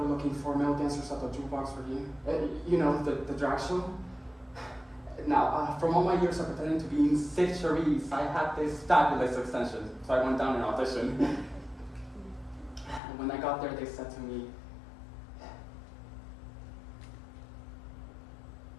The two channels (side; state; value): right; drops out; at 13.0 s